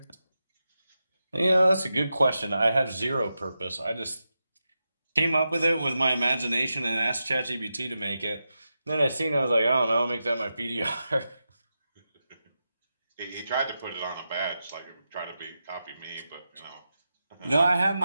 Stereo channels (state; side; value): inverted; both; correlation -0.90